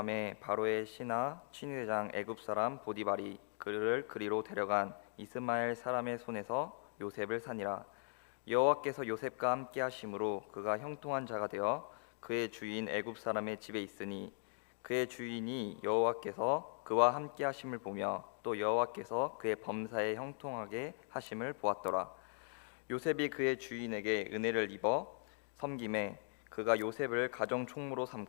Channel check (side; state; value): right; silent; 52 dB below the other